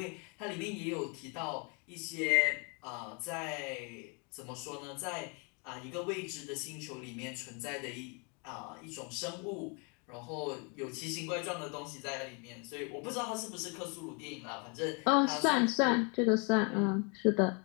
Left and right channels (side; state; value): right; quieter; 34.2 dB